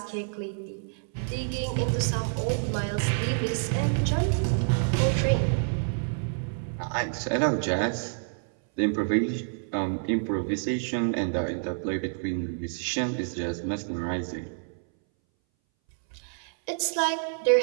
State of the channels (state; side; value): silent; left; 59 dB below the other